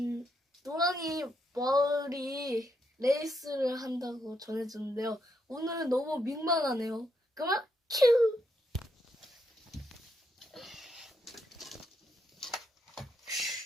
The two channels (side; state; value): both; normal; correlation 0.79